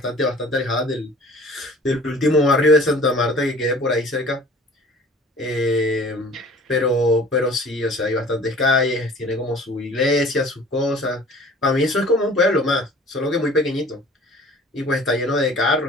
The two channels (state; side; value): normal; both; correlation 0.48